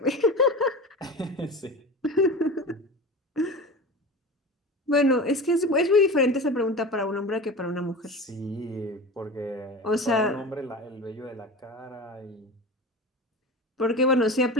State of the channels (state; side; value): normal; both; correlation 0.31